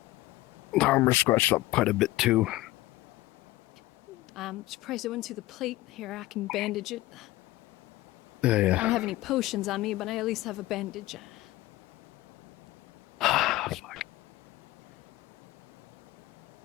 The armor's scratched up quite a bit too. I'm surprised I went to the plate. Here, I can bandage it. Yeah, I don't yeah. have any potions on me, but I at least have a bandage. Fuck.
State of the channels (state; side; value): quieter; right; 17.7 dB